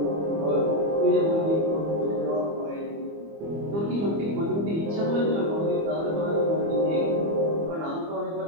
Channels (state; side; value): late; left; 25 ms